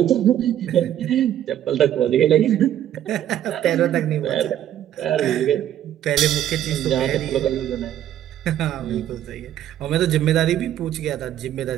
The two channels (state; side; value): quieter; left; 11.3 dB